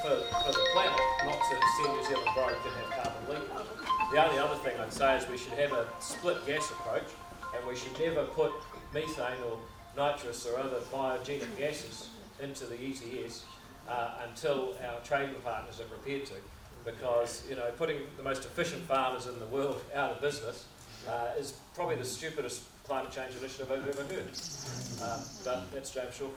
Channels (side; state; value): both; identical; correlation 1.00